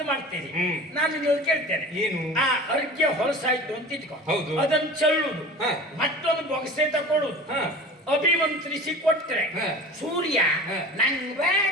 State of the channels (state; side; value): normal; both; correlation 0.37